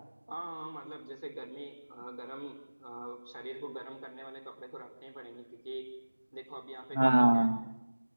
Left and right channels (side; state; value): both; inverted; correlation -1.00